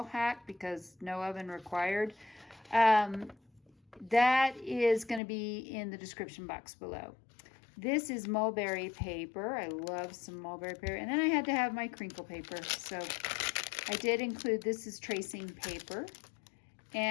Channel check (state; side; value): drops out; right; at 5.2 s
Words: hack because no oven required. That is going to be in the description box below. This is mulberry paper. I love some mulberry paper. And then I had to have my crinkle paper. So I did include, this is tracing paper.